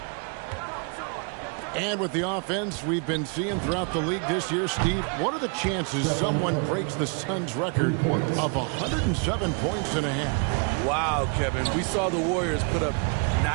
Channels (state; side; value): quieter; left; 37.5 dB